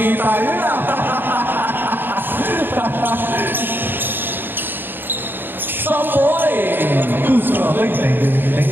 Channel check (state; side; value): late; left; 0.095 ms